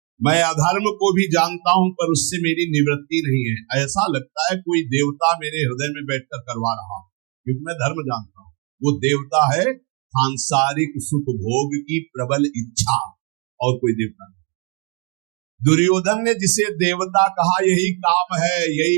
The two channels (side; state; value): left; quieter; 33.0 dB